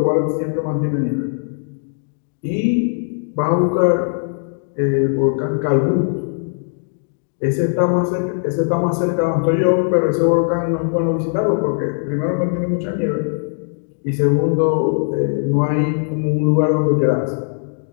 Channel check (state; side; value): silent; right; digital silence